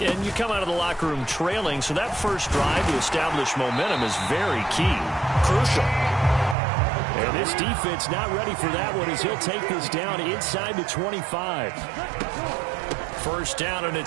you come out of the locker room trailing, so that first drive to establish momentum is very key. Crucial. And this defense not ready for that one as he'll take this down inside the 25. First down, and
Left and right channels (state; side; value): drops out; left; at 6.6 s